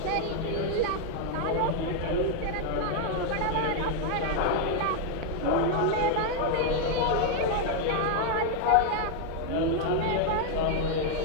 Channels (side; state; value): both; different; correlation 0.00